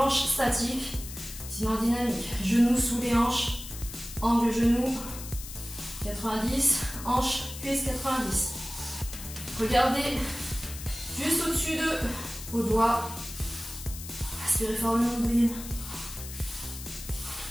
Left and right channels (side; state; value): left; noise; hiss, 11 dB below the sound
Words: statique, sinon dynamique. Genoux sous les hanches, angle genou 90, hanche, cuisse 90. Regardez juste au-dessus de vos doigts. Aspirez fort le nombril.